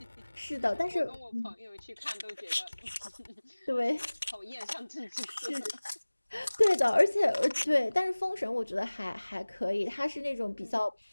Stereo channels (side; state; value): both; inverted; correlation -1.00